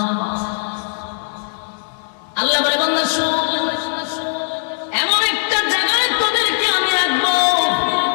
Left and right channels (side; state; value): right; silent; digital silence